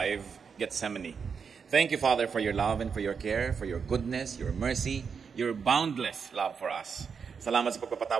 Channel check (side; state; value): left; quieter; 6.1 dB